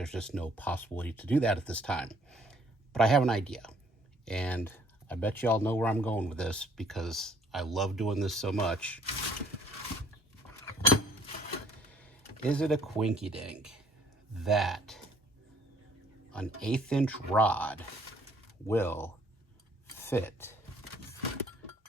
just no possibility to do that at this time, but I have an idea, and I bet you all know where I'm going with this because I love doing this so much. Is it a quinky dink that an 1/8 inch rod will fit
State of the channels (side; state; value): both; normal; correlation 0.61